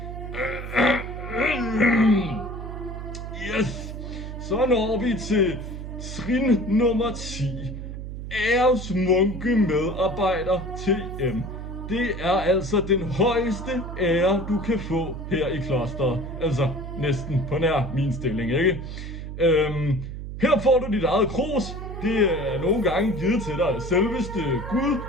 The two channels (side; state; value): right; noise; hum, 8 dB below the sound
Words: Yes, så når vi til trin nummer 10. Æresmunke medarbejder TM. Det er altså den højeste ære, du kan få her i klosteret. Altså næsten på nær min stilling, ikke? Her får du dit eget krus. Det er nogle gange givet til dig selveste Gud,